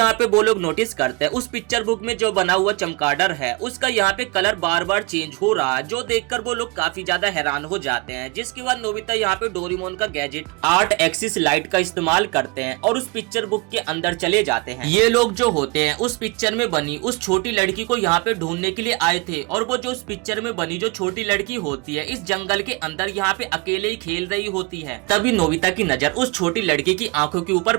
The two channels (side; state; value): left; quieter; 27.2 dB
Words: पे वो लोग नोटिस करते हैं उस पिक्चर बुक में जो बना हुआ चमगादड़ है उसका यहाँ पे कलर बार बार चेंज हो रहा है, जो देखकर वो लोग काफी ज्यादा हैरान हो जाते हैं। जिसके बाद नोबिता यहाँ पे डोरेमोन का गैजेट 8 एक्सिस लाइट का इस्तेमाल करते हैं और उस पिक्चर बुक के अंदर चले जाते हैं। ये लोग जो होते हैं उस पिक्चर में बनी उस छोटी लड़की को यहाँ पे ढूंढने के लिए आए थे और वो जो उस पिक्चर में बनी जो छोटी लड़की होती है इस जंगल के अंदर यहाँ पे अकेले ही खेल रही होती है। तभी नोबिता की नजर उस छोटी लड़की की आंखों के ऊपर